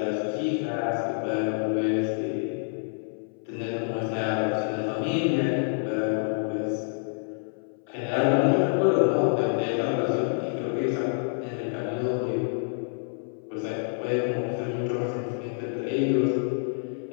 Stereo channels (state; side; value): silent; right; 60 dB below the other